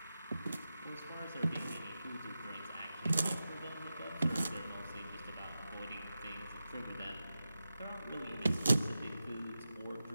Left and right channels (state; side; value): inverted; both; correlation -0.92